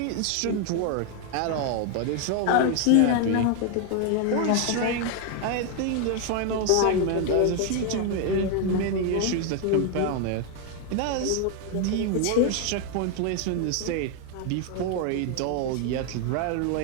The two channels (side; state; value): both; different; correlation 0.01